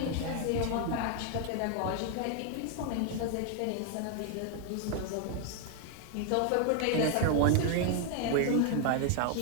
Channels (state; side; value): different; both; correlation 0.00